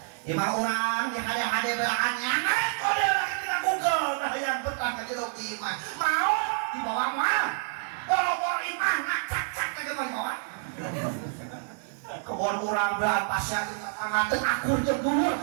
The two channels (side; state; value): left; silent; digital silence